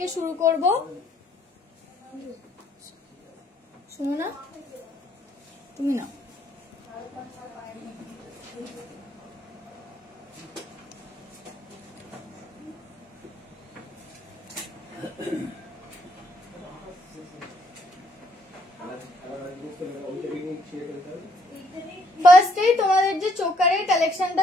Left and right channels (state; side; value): normal; both; correlation 0.68